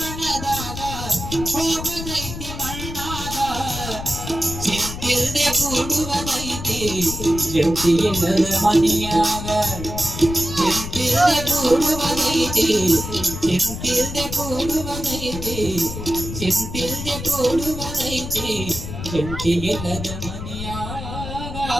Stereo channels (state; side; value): noise; left; rumble, 8 dB below the sound